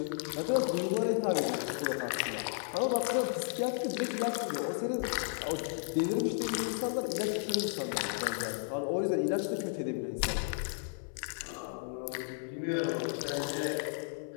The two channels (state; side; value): silent; right; 55 dB below the other